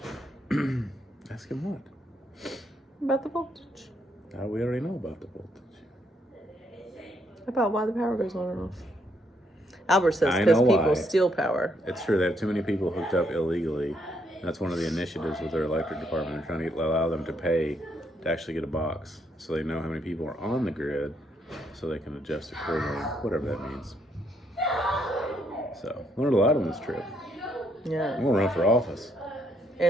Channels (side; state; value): both; normal; correlation 0.73